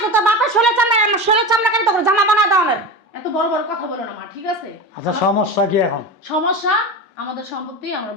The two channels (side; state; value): both; normal; correlation 0.25